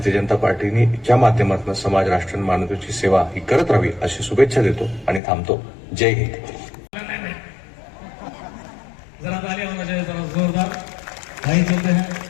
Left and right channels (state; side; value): drops out; right; at 5.2 s